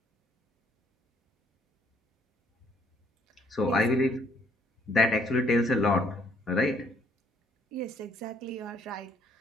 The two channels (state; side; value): normal; both; correlation 0.66